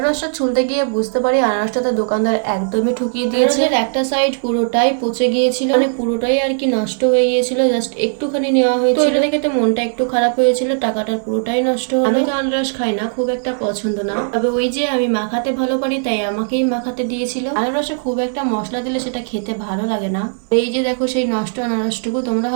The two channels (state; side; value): silent; left; digital silence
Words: ছুলতে গিয়ে বুঝতে পারি আনারসটা তো দোকানদার একদমই ঠকিয়ে দিয়েছে। একটা সাইড পুরোটাই পচে গিয়েছিল, মানে পুরোটাই আর কি নষ্ট হয়ে গিয়েছিল। জাস্ট একটুখানি নেওয়া হয়েছিল, তো এটা দেখে তো মনটা একটু খারাপ হয়েছিল, টাকাটার পুরোটাই নষ্ট হলো। আমি তো আনারস খাই না, খুব একটা পছন্দ না, তবে ওই যে আমি মাখাতে ভালো পারি তাই আমাকেই মাখাতে দিয়েছিল। আনারসে খুব একটা মশলা দিলে সেটা খেতে ভালো লাগে না। এই যে দেখো সেই নষ্ট আনারসটুকু, তোমরা